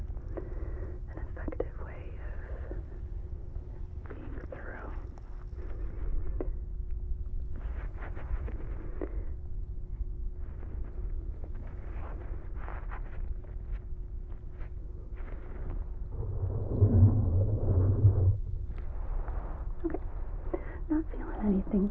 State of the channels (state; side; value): identical; both; correlation 1.00